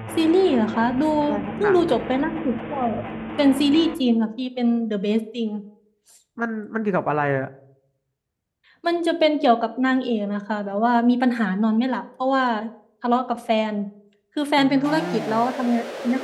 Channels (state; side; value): identical; both; correlation 1.00